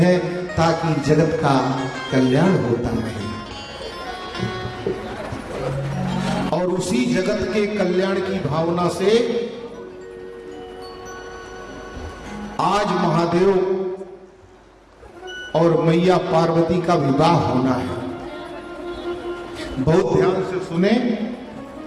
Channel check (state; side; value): identical; both; correlation 1.00